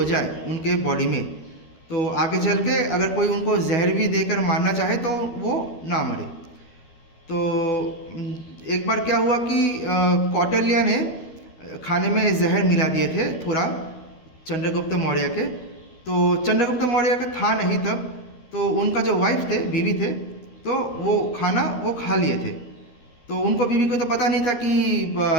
जाए उनके बॉडी में, तो आगे चल के अगर कोई उनको जहर भी देकर मारना चाहे तो वो ना मरे। तो एक बार क्या हुआ कि कौटिल्य ने खाने में जहर मिला दिए थे थोड़ा चंद्रगुप्त मौर्य के। तो चंद्रगुप्त मौर्य का था नहीं तब, तो उनका जो वाइफ थे, बीवी थे, तो वो खाना वो खा लिए थे। तो उनको बीवी को तो पता नहीं था कि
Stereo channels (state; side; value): late; right; 12 ms